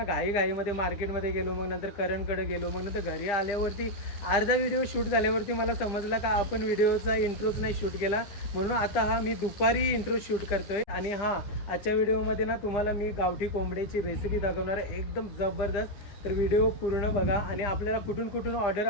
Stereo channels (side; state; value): right; late; 9.9 ms